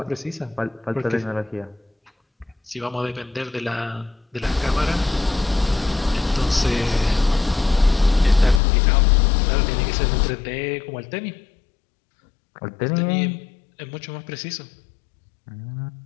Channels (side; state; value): right; drops out; at 8.6 s